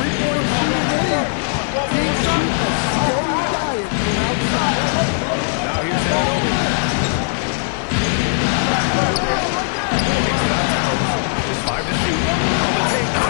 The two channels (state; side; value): silent; right; digital silence